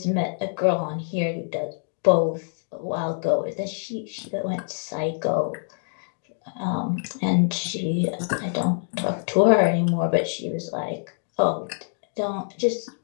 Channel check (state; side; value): silent; right; digital silence